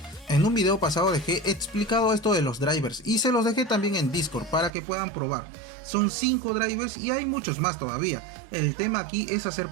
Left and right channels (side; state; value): left; drops out; at 4.7 s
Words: En un video pasado dejé explicado esto de los drivers y se los dejé también en Discord para que puedan probar. Son 5 drivers y hay muchos más todavía. El tema aquí es hacer